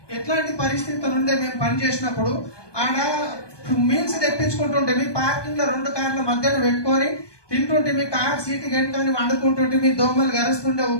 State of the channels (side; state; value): right; late; 1.2 ms